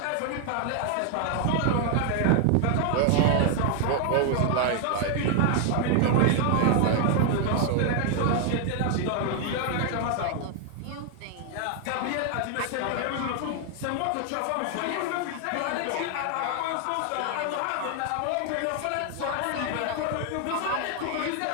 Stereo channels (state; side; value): different; both; correlation 0.00